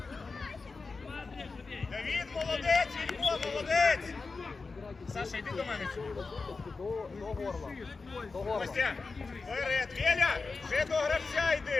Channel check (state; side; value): quieter; right; 4.2 dB